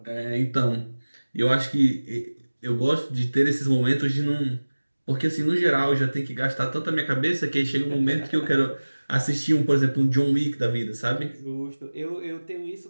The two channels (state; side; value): inverted; both; correlation -1.00